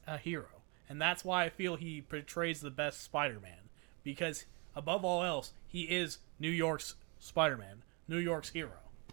a hero. And that's why I feel he portrays the best Spider-Man. Because, above all else, he is New York's Spider-Man. New York's hero.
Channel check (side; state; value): left; quieter; 30.6 dB